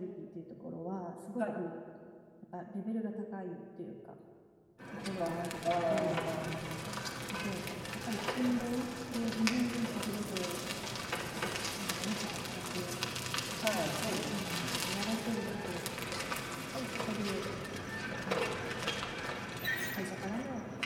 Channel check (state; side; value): identical; both; correlation 1.00